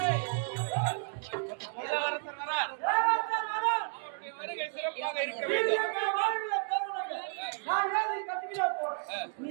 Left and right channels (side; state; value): left; silent; 56 dB below the other